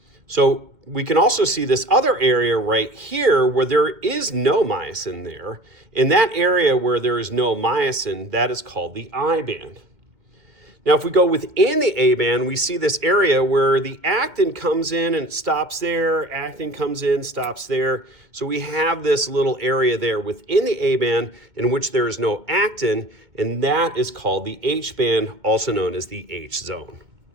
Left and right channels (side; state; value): left; late; 2.2 ms